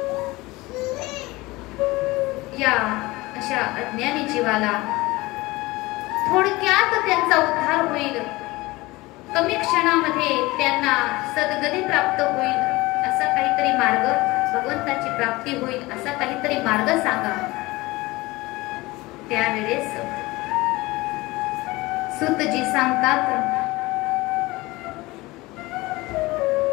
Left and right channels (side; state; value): right; quieter; 21.1 dB